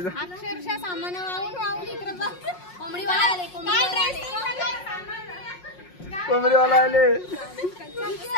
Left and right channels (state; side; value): late; right; 5.5 ms